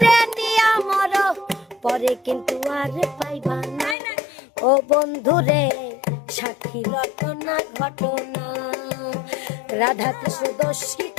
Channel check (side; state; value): right; drops out; at 4.0 s